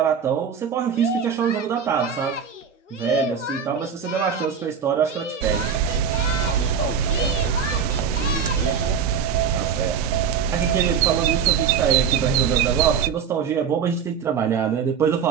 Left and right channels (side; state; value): left; quieter; 7.0 dB